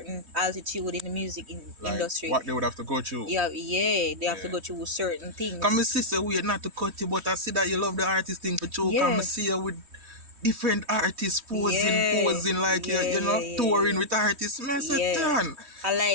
altitude in the Like industry, what they would have to go through. they have to Yeah. go through certain Come and things. see say we not to cut you, but I see that you love the artist thing for true. Come and Yeah, see you with different artists yeah, posing like yeah, yeah, touring yeah, with artists. Man, I say, yeah. "Turn." I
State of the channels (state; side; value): late; left; 3.1 ms